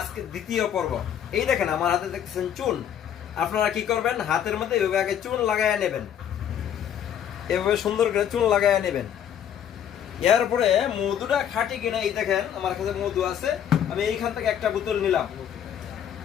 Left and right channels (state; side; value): quieter; right; 9.4 dB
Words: দ্বিতীয় পর্ব। এই দেখেন আমার হাতে দেখছেন চুন। আপনারা কি করবেন, হাতের মধ্যে এভাবে আগে চুন লাগাইয়া নেবেন, এভাবে সুন্দর করে চুন লাগাইয়া নেবেন। এরপরে মধুটা খাঁটি কিনা এই দেখেন আমার কাছে মধু আছে, আমি এইখান থেকে একটা বোতল নিলাম।